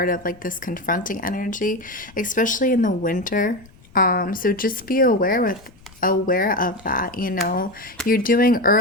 of like this confronting energy, especially in the winter. So just be aware of that. You know, you're doing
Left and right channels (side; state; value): left; noise; rumble, 25 dB below the sound